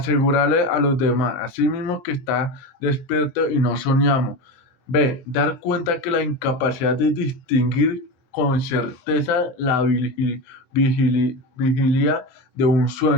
a los demás, a sí mismo, que está despierto y no soñamos. B. Dar cuenta que la incapacidad de distinguir con certeza la vigilia de un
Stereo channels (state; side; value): late; right; 24 ms